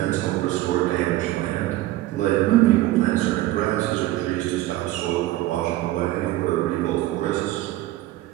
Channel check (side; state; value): left; quieter; 16.0 dB